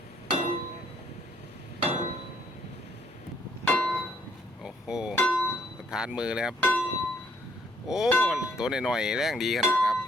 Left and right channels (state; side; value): normal; both; correlation 0.68